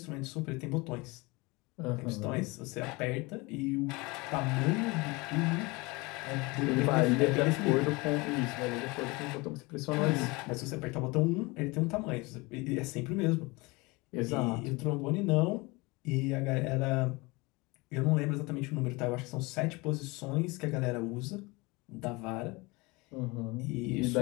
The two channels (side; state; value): right; quieter; 24.9 dB